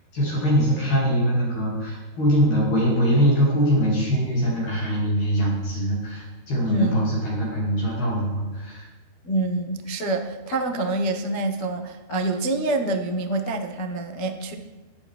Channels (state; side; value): late; right; 12 ms